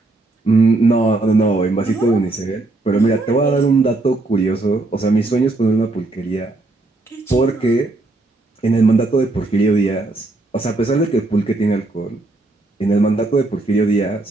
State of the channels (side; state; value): left; quieter; 3.0 dB